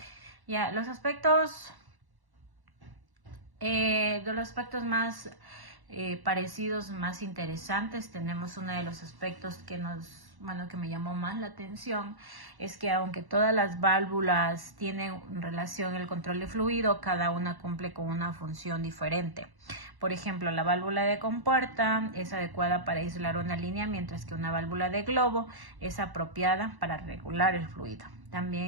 Ya, los aspectos más parecidos, más interesantes, tenemos uno de los aspectos que que me llamó más la atención, es que aunque todas las válvulas tienen relación el control de fluido, cada una cumple con una función diferente. Por ejemplo, la válvula de compuerta es adecuada para aislar una línea, mientras que una válvula de globo es apropiada para regular el fluido.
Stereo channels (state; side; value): late; left; 1.1 ms